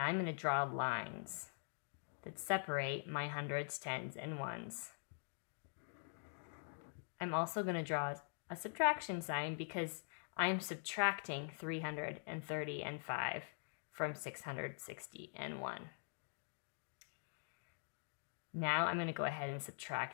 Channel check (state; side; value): silent; right; digital silence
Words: I'm going to draw lines that separate my hundreds, tens, and ones. I'm also going to draw a subtraction sign because I'm subtracting 330 and 5 from 660 and 1. Now I'm going to go ahead and